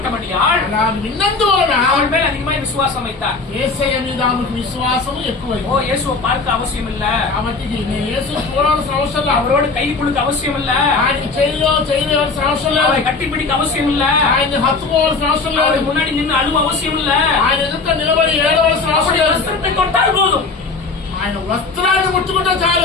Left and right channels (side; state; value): right; quieter; 4.1 dB